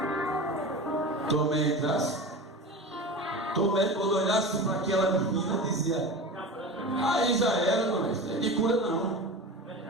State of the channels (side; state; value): both; normal; correlation 0.31